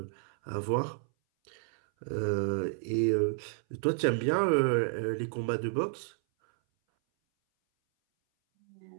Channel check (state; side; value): silent; left; 57 dB below the other